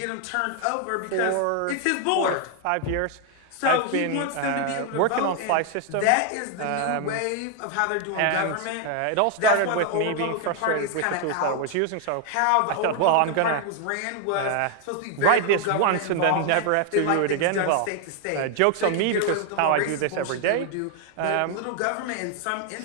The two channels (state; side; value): different; both; correlation 0.00